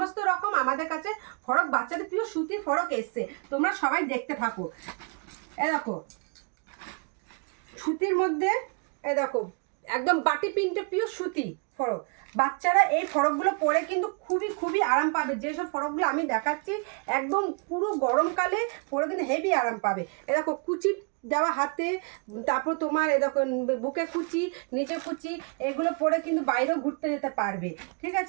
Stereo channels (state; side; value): quieter; left; 36.5 dB